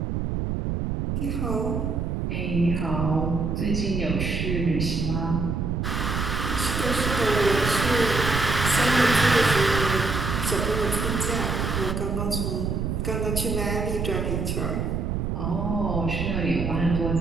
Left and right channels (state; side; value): noise; right; rumble, 1 dB below the sound